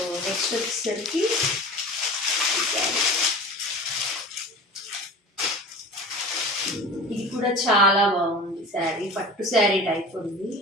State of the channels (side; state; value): both; normal; correlation 0.37